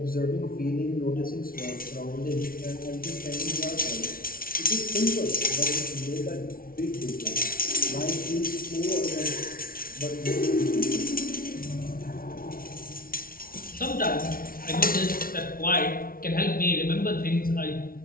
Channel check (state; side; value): late; right; 0.43 ms